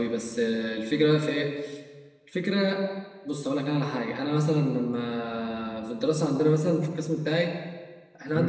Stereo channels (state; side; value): identical; both; correlation 1.00